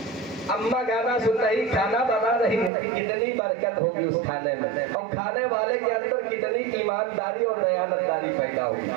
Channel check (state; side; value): drops out; left; at 2.7 s